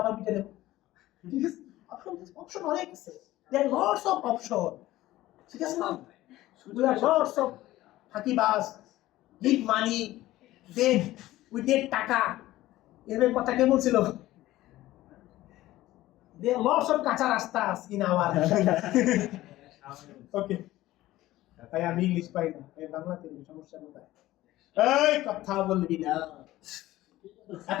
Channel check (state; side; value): quieter; right; 16.2 dB